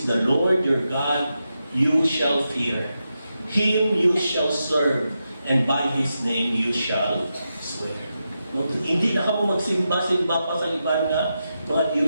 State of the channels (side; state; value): both; inverted; correlation -0.88